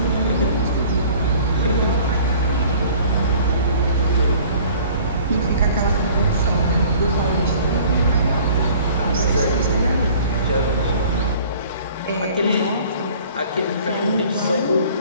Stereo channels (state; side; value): inverted; both; correlation -0.50